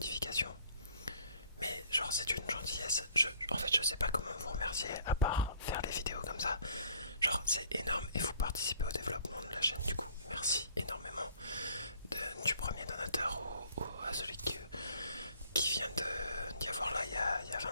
Mais genre, c'est une gentillesse. En fait, je sais pas comment vous remercier à part faire les vidéos comme ça. Genre, c'est énorme et vous participez au développement de la chaîne. Du coup, merci énormément du premier donateur à celui qui vient d'y avoir là il y a 20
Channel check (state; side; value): inverted; both; correlation -0.58